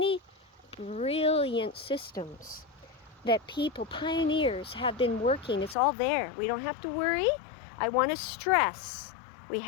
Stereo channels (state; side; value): drops out; right; at 5.8 s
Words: brilliant systems that people, pioneers, have been working. It's all there. We don't have to worry. I want to stress, we